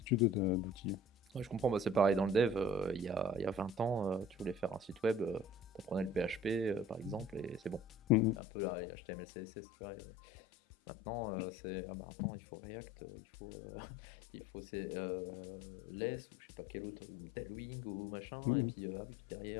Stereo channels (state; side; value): drops out; right; at 8.4 s